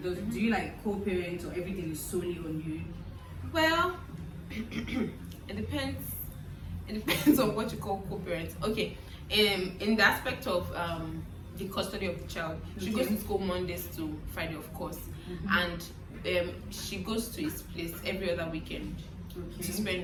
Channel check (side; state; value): both; identical; correlation 1.00